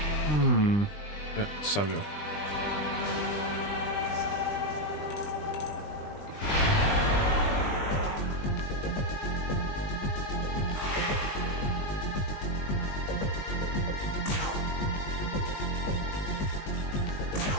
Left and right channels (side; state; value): right; late; 20 ms